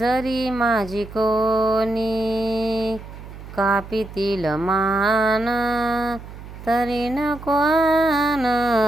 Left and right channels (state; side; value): noise; right; hum, 14 dB below the sound